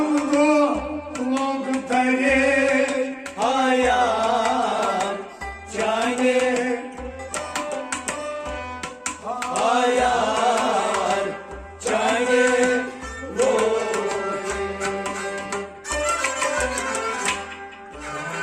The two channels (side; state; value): both; identical; correlation 1.00